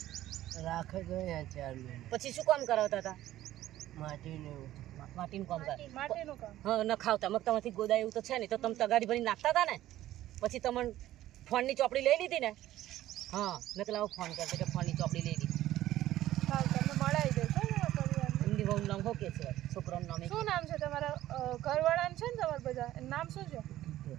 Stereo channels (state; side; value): quieter; left; 14.2 dB